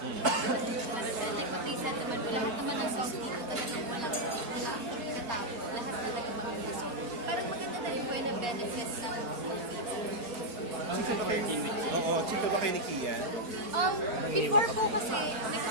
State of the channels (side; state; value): left; late; 4.2 ms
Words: Ano siya, like what they said naman po, lahat naman ng songs dito talagang walang katapos. Lahat talaga maganda. So, parang maganda na rin po yung benefits ng movie. Oo, chika ba kayo ni Kian? Before po kasi, may